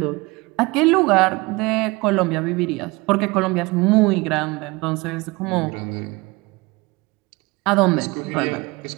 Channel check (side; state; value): left; quieter; 24.0 dB